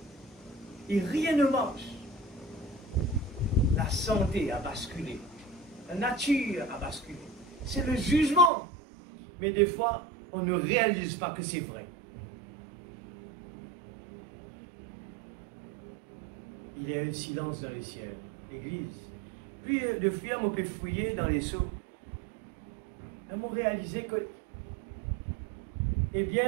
Et rien ne marche. La santé a basculé. La nature a basculé. C'est le jugement. Mais des fois, on ne réalise pas que c'est vrai. Il y a un silence dans les ciels. L'église. Puis, de fouiller, on peut fouiller dans les seaux. On a réalisé que, eh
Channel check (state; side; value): drops out; left; at 8.5 s